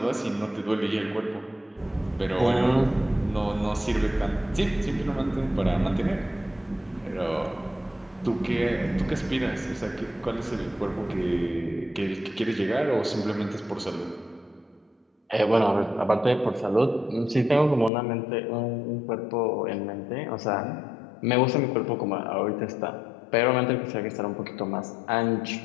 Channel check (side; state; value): right; drops out; at 17.9 s